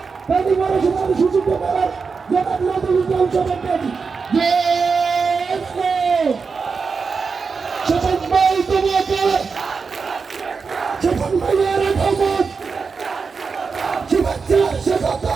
সুযোগ করার জনাব নজরুল ইসলাম সভাপতি শপথ ভাই তোমাকে শপথ ভাইয়ের আগমন শুভেচ্ছা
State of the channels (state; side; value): quieter; left; 5.0 dB